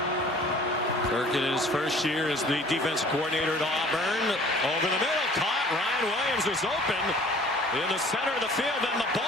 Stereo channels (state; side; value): normal; both; correlation 0.50